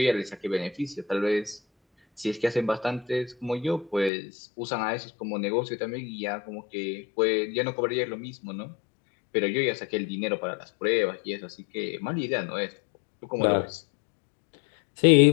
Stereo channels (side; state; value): right; drops out; at 4.1 s